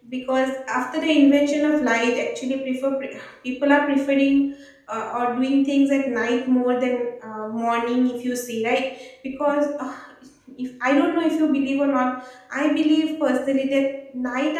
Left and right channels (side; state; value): both; identical; correlation 1.00